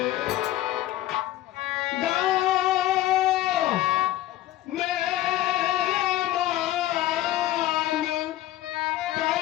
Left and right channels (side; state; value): right; quieter; 14.9 dB